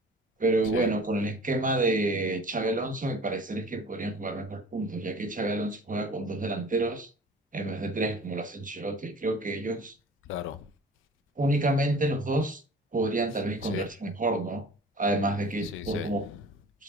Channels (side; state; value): both; normal; correlation 0.45